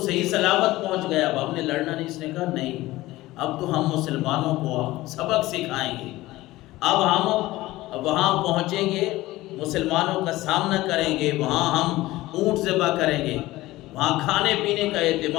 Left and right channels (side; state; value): right; quieter; 17.8 dB